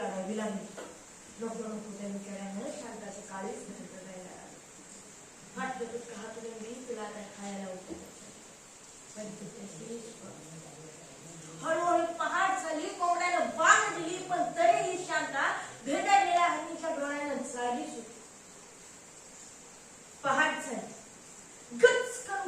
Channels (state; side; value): identical; both; correlation 1.00